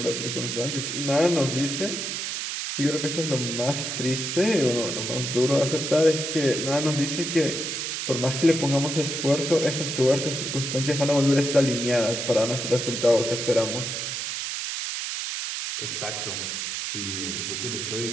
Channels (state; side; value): noise; right; hiss, 3 dB below the sound